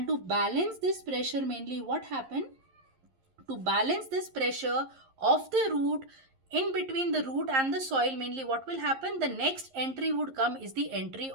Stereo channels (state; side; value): late; left; 11 ms